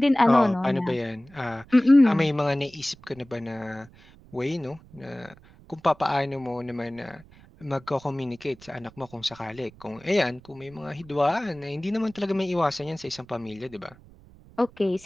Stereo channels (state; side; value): noise; right; rumble, 24 dB below the sound